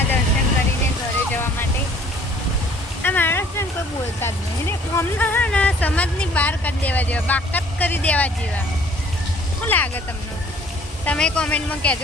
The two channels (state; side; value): normal; both; correlation 0.56